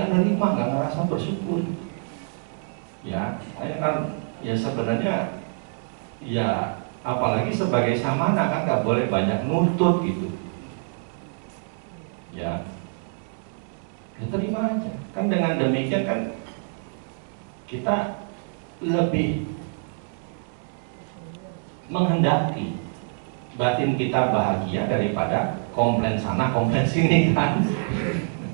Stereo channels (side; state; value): left; silent; 59 dB below the other